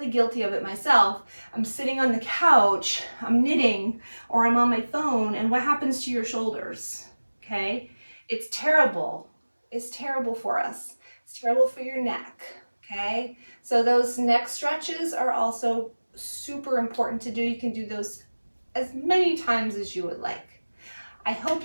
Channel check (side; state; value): both; inverted; correlation -1.00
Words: guilty of it myself. I'm sitting on the couch, I'm knitting, or I'm on my phone, and what happens to your shoulders? Okay? It's terrible. It's terrible for us. It's terrible for your neck. Okay? So those neck stretches are also super important to do. You can do those as many times as you would like. I hope